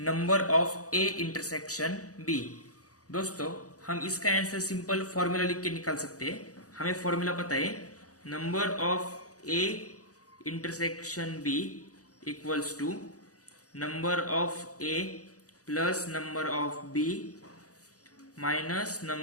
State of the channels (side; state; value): right; late; 0.67 ms